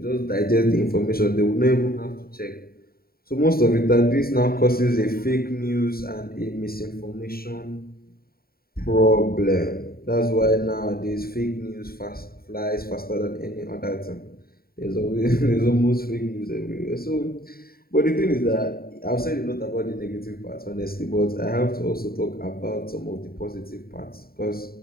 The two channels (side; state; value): right; late; 0.44 ms